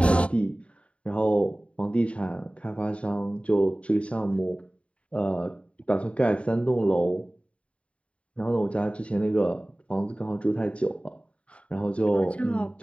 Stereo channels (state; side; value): late; right; 0.062 ms